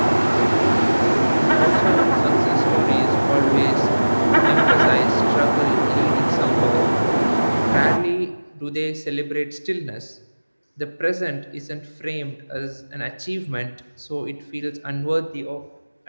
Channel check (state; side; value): inverted; both; correlation -1.00